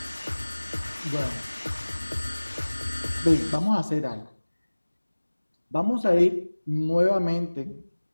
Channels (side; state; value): both; inverted; correlation -1.00